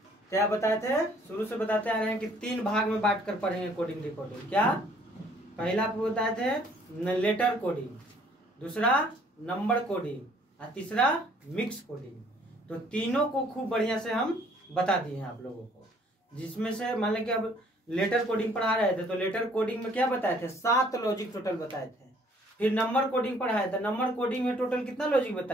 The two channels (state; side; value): normal; both; correlation 0.60